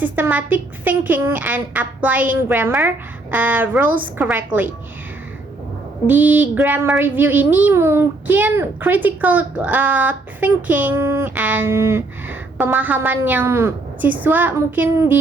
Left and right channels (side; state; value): left; quieter; 3.1 dB